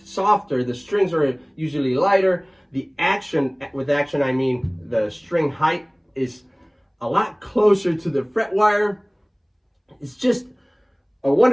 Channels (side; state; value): both; identical; correlation 1.00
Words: softer. The strings are usually lighter. The action, with action I mean the string height, is a lot closer to the fret wire. It's just a